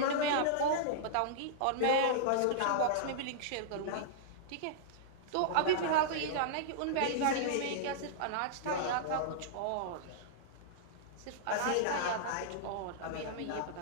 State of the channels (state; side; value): different; both; correlation -0.02